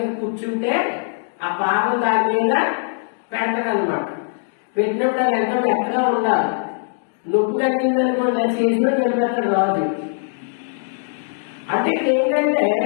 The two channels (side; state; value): right; silent; digital silence